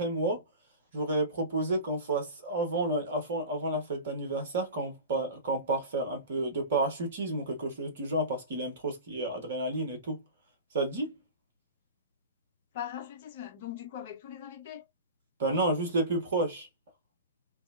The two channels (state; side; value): inverted; both; correlation -0.32